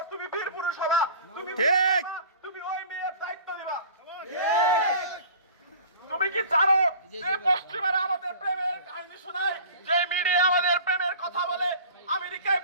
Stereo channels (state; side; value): inverted; both; correlation -0.43